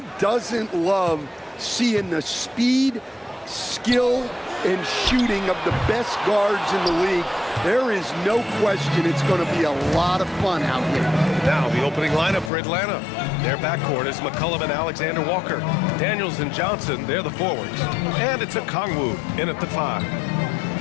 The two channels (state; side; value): drops out; right; at 12.5 s